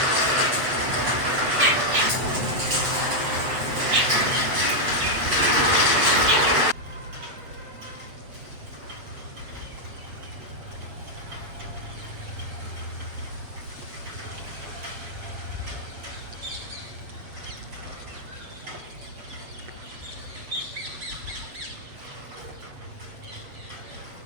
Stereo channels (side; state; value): left; late; 8.0 ms